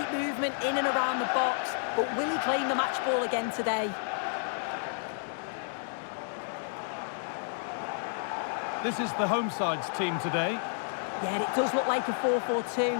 movement in and around the box. But will he claim the match ball again today? This is the home side's team today. Yeah, it does look like a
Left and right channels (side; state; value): right; silent; 57 dB below the other